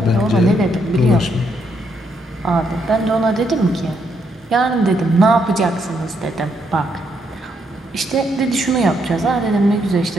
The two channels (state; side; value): normal; both; correlation 0.76